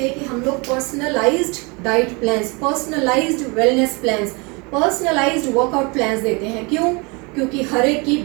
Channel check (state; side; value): quieter; left; 29.3 dB